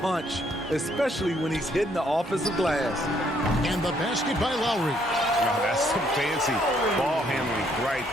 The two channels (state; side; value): normal; both; correlation 0.69